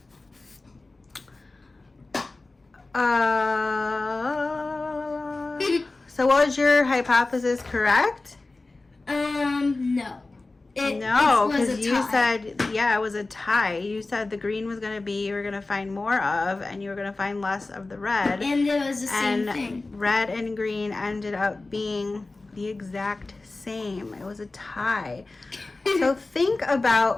so was your hypothesis correct? No. No, it was because a you tie. said, yeah, it was a tie. You said the green was going to be, you were going to find more of, and you were going to find less of the red. And it was the same And thing. red and green ended up being the exact same. It was a tie. So think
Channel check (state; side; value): quieter; right; 3.3 dB